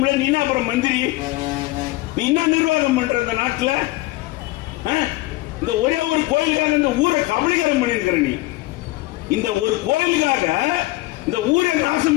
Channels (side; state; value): right; quieter; 19.8 dB